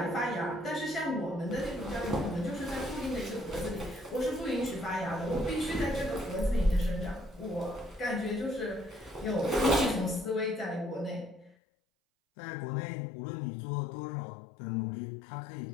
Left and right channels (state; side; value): drops out; right; at 11.6 s